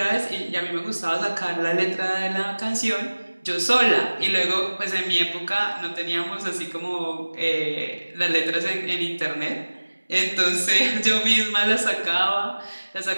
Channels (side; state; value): both; inverted; correlation -1.00